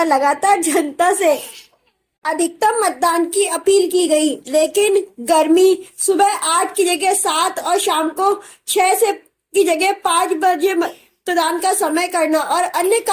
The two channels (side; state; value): both; identical; correlation 1.00